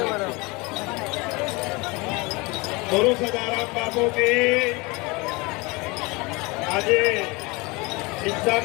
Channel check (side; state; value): right; quieter; 25.6 dB